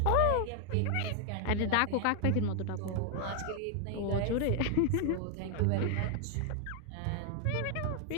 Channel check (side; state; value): both; different; correlation 0.00